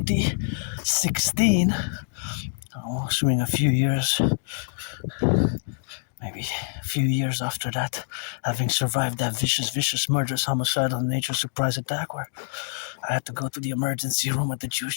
Assuming maybe a few years after that, having survived that vicious, murderous, homicidal nature surprise attack where I had to go to the emergency room at the Jewish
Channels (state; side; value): silent; right; digital silence